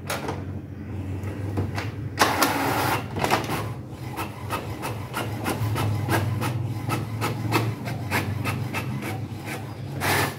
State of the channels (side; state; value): both; identical; correlation 1.00